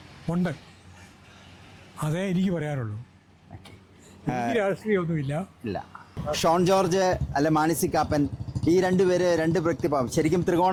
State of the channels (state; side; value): identical; both; correlation 1.00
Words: ഉണ്ട്. അതേ എനിക്ക് പറയാനുള്ളൂ. രാഷ്ട്രീയമൊന്നുമില്ല. ഇല്ല. ഷോൺ ജോർജ് അല്ലെ മാണി കാപ്പൻ, ഈ 2 പേര് 2 വ്യക്തിഭാവം. ശരിക്കും